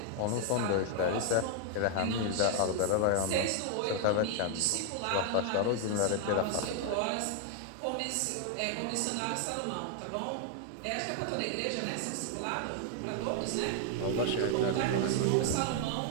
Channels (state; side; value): different; both; correlation 0.00